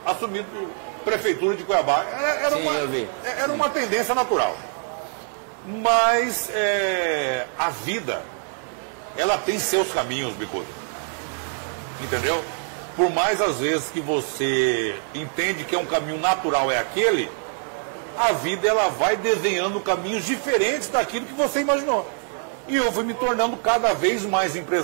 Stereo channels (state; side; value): silent; left; 56 dB below the other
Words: assumido prefeitura de Cuiabá. Era uma tendência natural. Mas a vida, ela tem seus caminhos, Bicudo. Entendeu? Por mais às vezes que você entende que é um caminho natural, é aquele, a vida ela vai desenhando caminhos diferentes daquilo que você imaginou. E eu fui me tornando cada vez mais